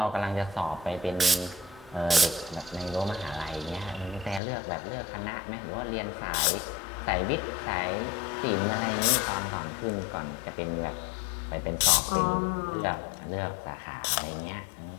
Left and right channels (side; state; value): right; drops out; at 4.4 s